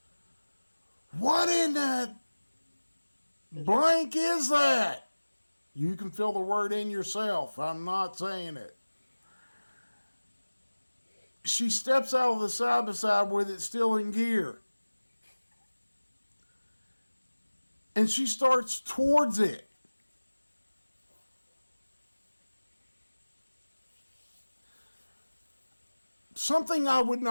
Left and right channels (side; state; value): both; inverted; correlation -1.00